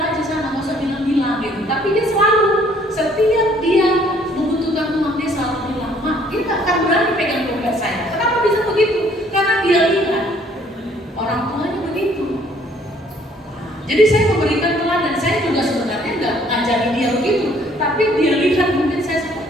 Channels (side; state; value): both; normal; correlation 0.61